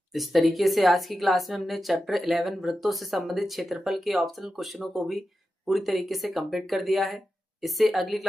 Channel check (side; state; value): both; normal; correlation 0.91